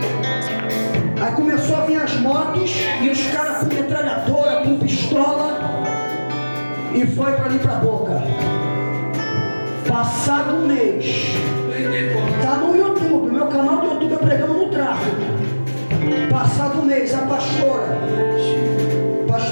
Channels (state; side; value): inverted; both; correlation -1.00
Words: Aí começou a vir as motos e os caras com metralhadora, com pistola, e foi pra ali pra Boca. Passado um mês, tá no YouTube, meu canal do YouTube é pregando no tráfego. Passado um mês, a pastora,